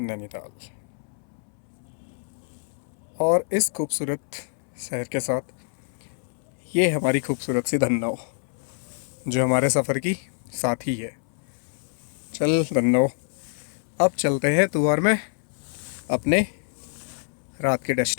नैनीताल। और इस खूबसूरत शहर के साथ ये हमारी खूबसूरत सी धन्नो, जो हमारे सफ़र की साथी है। चल धन्नो, अब चलते हैं तुआर में अपने रात के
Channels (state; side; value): silent; right; 61 dB below the other